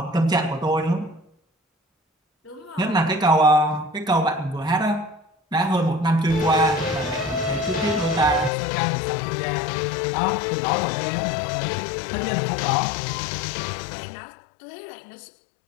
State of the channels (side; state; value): right; drops out; at 8.5 s